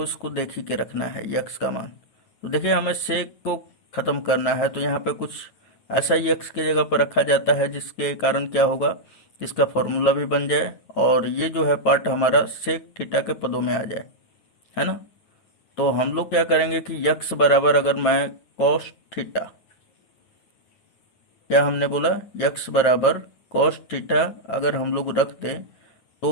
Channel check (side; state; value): right; late; 9.1 ms